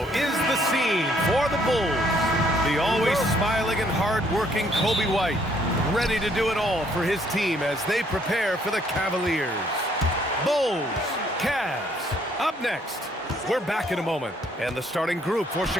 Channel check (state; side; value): normal; both; correlation 0.66